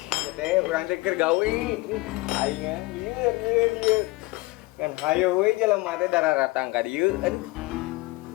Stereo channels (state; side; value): quieter; right; 22.0 dB